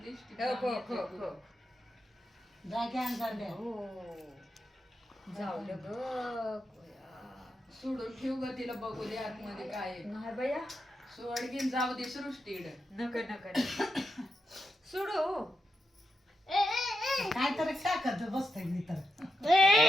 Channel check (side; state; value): both; normal; correlation 0.86